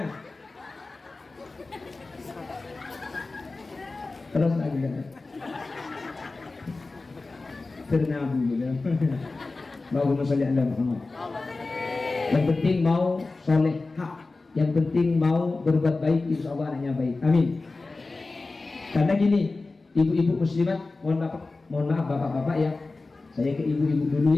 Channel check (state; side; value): quieter; right; 3.5 dB